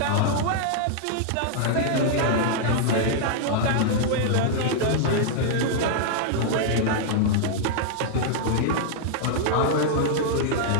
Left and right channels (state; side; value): different; both; correlation -0.01